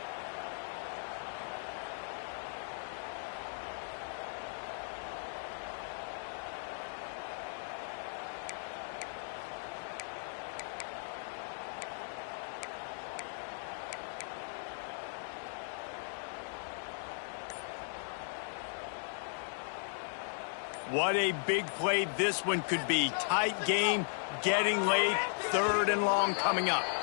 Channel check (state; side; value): silent; right; digital silence